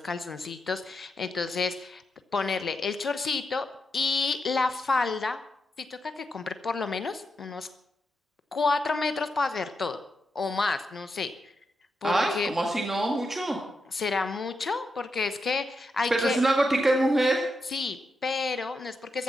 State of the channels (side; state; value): both; normal; correlation 0.85